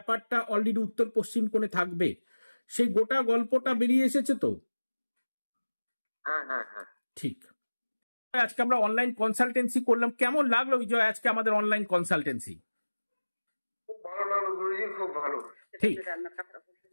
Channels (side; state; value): both; inverted; correlation -1.00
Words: অলরেডি উত্তর পশ্চিম কোণে থাকবে, সেই গোটা গল্পটা বেরিয়ে এসেছে তো? হ্যাঁ হ্যাঁ হ্যাঁ। ঠিক। আজকে আমরা অনলাইন কনসালটেন্সি করলাম, কেমন লাগলো বিজয় আজকে আমাদের অনলাইন কনসালটেন্সি? খুব ভালো লাগলো গুরুজি, খুব ভালো। ঠিক।